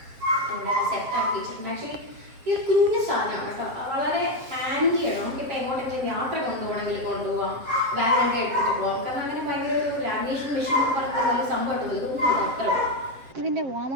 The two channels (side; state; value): left; late; 7.6 ms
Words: എല്ലാം സെറ്റാക്കി വെച്ചിട്ടുണ്ട്. ആക്ച്വലി ഈ ഒരു കുഞ്ഞു സാധനമാണ് കേട്ടോ. വളരെ ഹാൻഡിയാണ്. നമുക്കിപ്പോൾ എങ്ങോട്ടെങ്കിലും യാത്ര കൊണ്ടുപോകാം, ബാഗൊക്കെ എടുത്തിട്ട് പോകാം. കാരണം അങ്ങനെ ഭയങ്കര ഒരു ലാമിനേഷൻ മെഷീൻ എന്ന് പറയുന്ന വലിയ സംഭവമായിട്ടുള്ളൂ. ഇതൊന്നും അത്ര. ഇതിൻ്റെ വാം